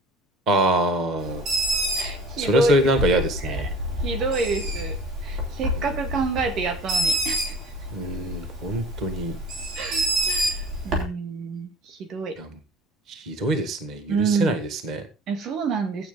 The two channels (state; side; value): normal; both; correlation 0.43